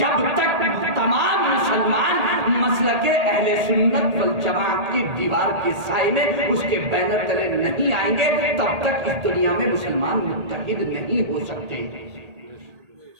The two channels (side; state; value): left; late; 1.8 ms